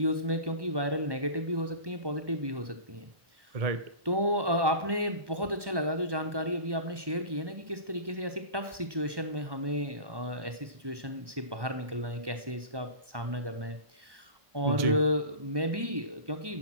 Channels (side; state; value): left; late; 1.1 ms